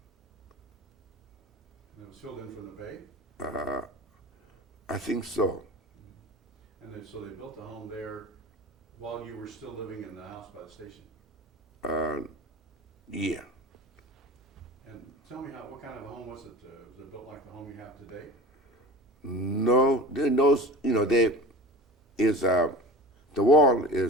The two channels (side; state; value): both; normal; correlation 0.36